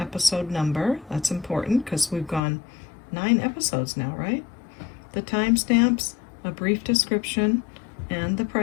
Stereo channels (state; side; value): drops out; right; at 2.4 s